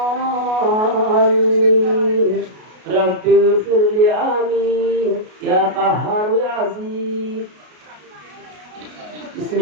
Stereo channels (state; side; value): late; left; 33 ms